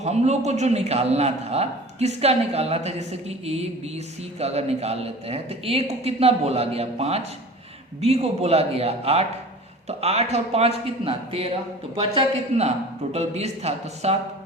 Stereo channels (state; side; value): normal; both; correlation 0.40